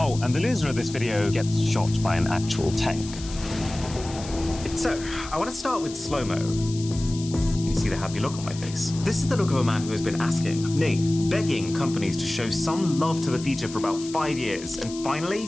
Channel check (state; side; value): noise; left; hiss, 14 dB below the sound